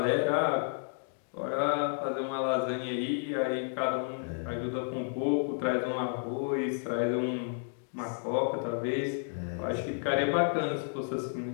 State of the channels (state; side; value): silent; right; digital silence